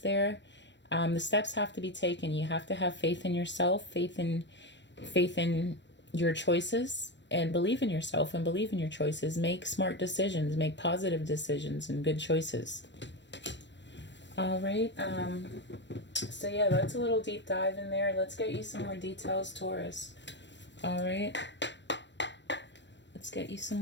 there. The steps have to be taken. You have to have faith in yourself, faith in your choices. And believe in yourself and believe in your choices. Make smart decisions. Make positive decisions and good choices. All right. So yeah, that's a little deep dive in there. Let's get you some more details, Taurus. All right. Let's get you some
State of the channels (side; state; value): right; late; 0.53 ms